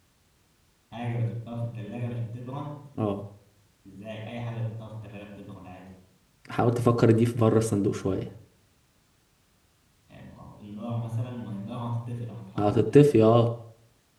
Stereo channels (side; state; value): both; identical; correlation 1.00